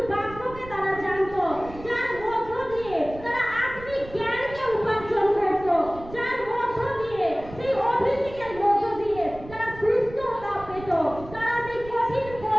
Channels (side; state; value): right; noise; rumble, 16 dB below the sound